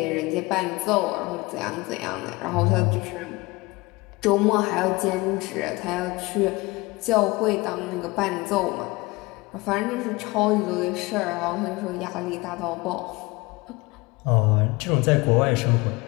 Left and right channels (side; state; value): right; quieter; 23.0 dB